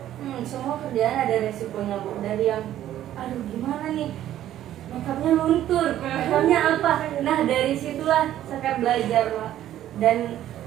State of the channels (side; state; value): left; quieter; 12.3 dB